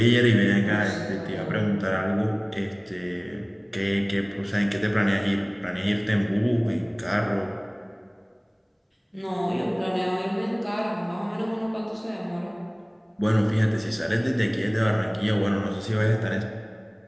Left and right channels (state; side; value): identical; both; correlation 1.00